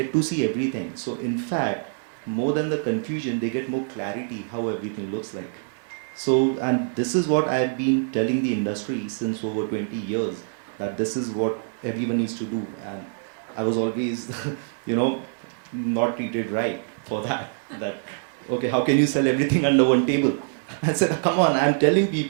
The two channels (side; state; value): left; silent; digital silence